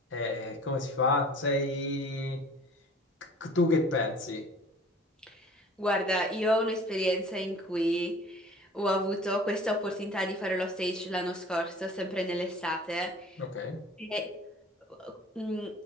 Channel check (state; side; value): normal; both; correlation 0.47